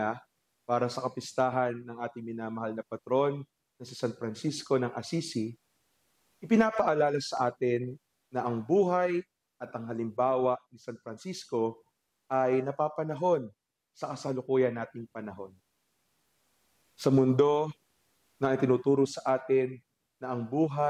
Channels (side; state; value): both; identical; correlation 1.00